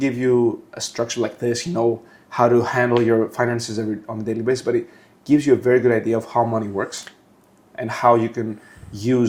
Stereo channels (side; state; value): both; identical; correlation 1.00